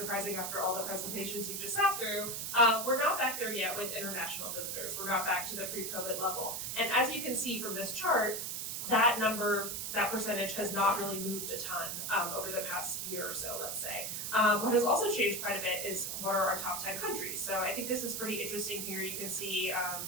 after all the presentations you just sat through. We're not back there yet with international visitors. We're not back to the pre-COVID level. And as you can see from this chart, that number, that percentage has not really moved a ton over the past year or so, let's say. What has also changed quite a bit is what are our top 10 countries. So I think this is pretty interesting here. You can see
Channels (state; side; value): noise; right; hiss, 4 dB below the sound